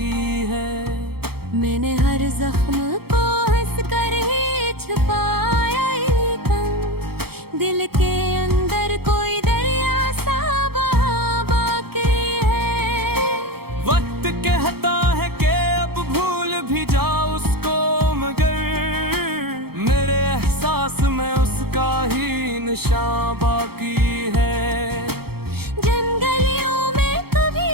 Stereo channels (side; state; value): left; late; 0.96 ms